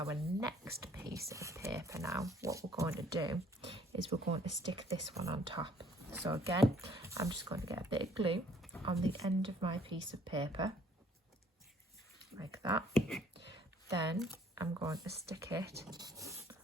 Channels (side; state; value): both; normal; correlation 0.60